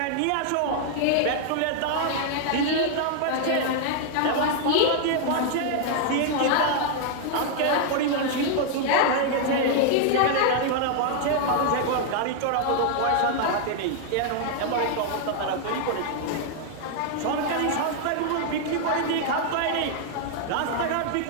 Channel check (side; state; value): both; different; correlation 0.00